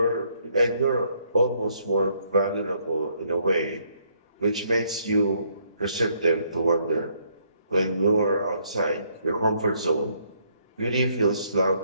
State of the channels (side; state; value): both; inverted; correlation -0.70